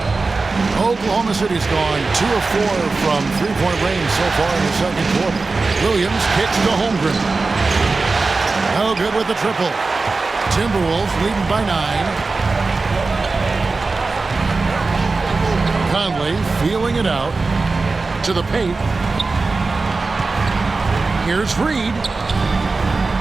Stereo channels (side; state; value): left; quieter; 3.8 dB